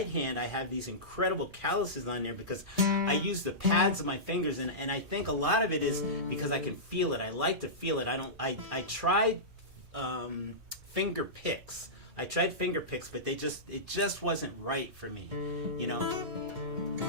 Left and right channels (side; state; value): left; late; 4.5 ms